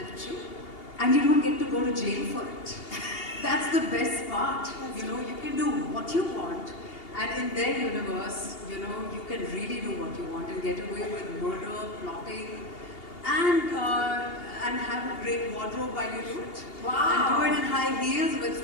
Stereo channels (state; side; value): late; right; 2.8 ms